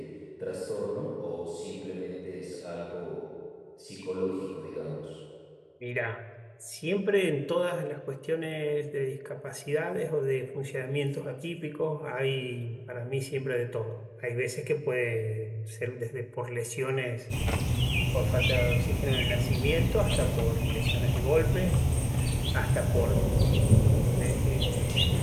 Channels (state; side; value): identical; both; correlation 1.00